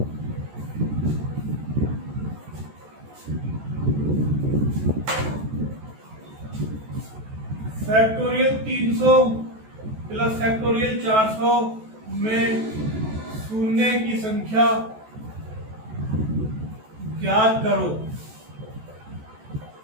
फैक्टोरियल 300 प्लस फैक्टोरियल 400 में शून्य की संख्या ज्ञात करो।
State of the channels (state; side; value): late; left; 14 ms